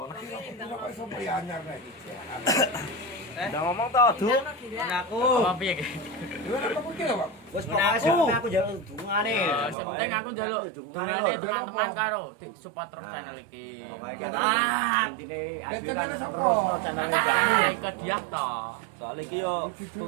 kok iso anyar nek iki. Udah ngomong to, Du. Aku. Apa piye iki? Lha apa kuwi lho, Pak? Wes pokoke aku njaluk dungane. Sing penting aku njaluk dongane teman-teman karo support terus channel iki. Ah, Intine Ya, adik channel kan sapa? terus channel nah, ke dia to. Soalnya iki yo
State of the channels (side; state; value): left; drops out; at 9.8 s